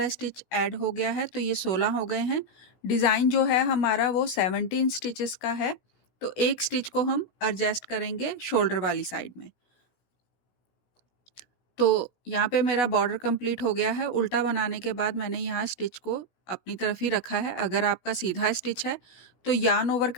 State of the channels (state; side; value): late; right; 16 ms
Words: स्टिच ऐड हो गया है तो ये 16 हो गए हैं। डिज़ाइन जो है हमारा वो 17 स्टिचेस का है। तो एक स्टिच को हम एडजस्ट करेंगे शोल्डर वाली साइड में। तो यहाँ पे मेरा बॉर्डर कंप्लीट हो गया है। उल्टा बनाने के बाद मैंने यहाँ स्टिच को अपनी तरफ ही रखा है। अगर आपका सीधा स्टिच है तो यार्न ओवर